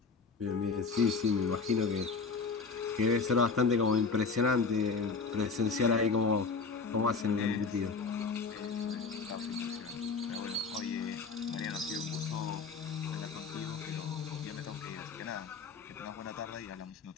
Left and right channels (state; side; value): quieter; right; 4.7 dB